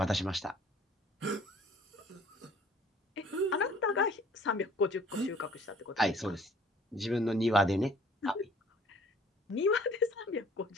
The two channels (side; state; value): both; normal; correlation 0.54